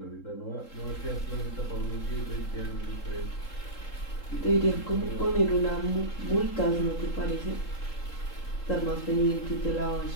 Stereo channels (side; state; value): right; late; 3.8 ms